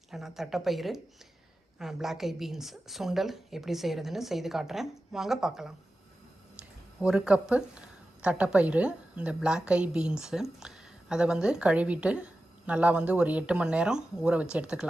இல்லைனா தட்டைப்பயிறு பிளாக் ஐ பீன்ஸ் சுண்டல் எப்படி செய்கிறதுன்னு செய்து காட்டுறேன். வாங்க பார்க்கலாம். 1 கப்பு தட்டைப்பயிறு, இந்த பிளாக் ஐ பீன்ஸு அதை கழுவிட்டு நல்லா ஒரு 8 மணி நேரம் ஊற வச்சு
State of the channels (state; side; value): normal; both; correlation 0.93